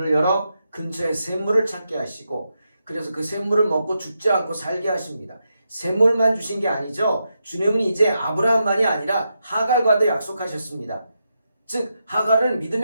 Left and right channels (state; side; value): inverted; both; correlation -0.85